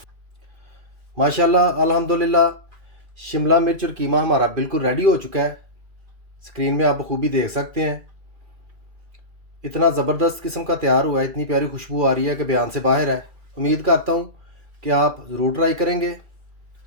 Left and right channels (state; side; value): late; left; 2.4 ms